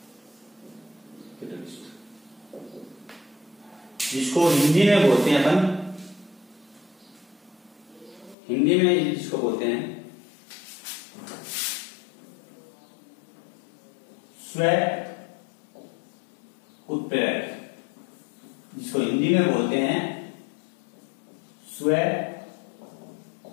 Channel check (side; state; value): right; drops out; at 8.3 s